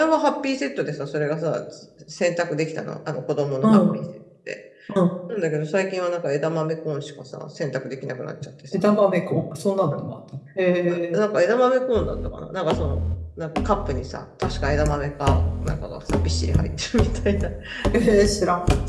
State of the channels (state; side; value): identical; both; correlation 1.00